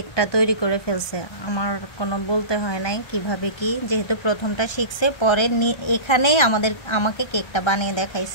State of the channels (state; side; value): late; right; 1.3 ms